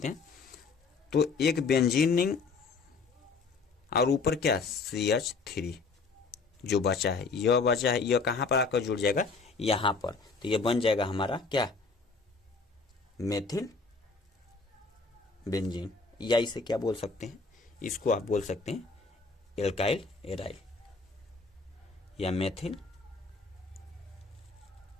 हैं, तो एक बेंजीन रिंग और ऊपर क्या? CH3 जो बचा है, यह बचा है, यह कहाँ पर आकर जुड़ जाएगा? यहाँ पर। तो यह बन जाएगा हमारा क्या? मेथिल बेंजीन, या इसे क्या बोल सकते हैं? इसको आप बोल सकते हैं एल्काइल एराइल या मेथिल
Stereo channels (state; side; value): quieter; right; 4.3 dB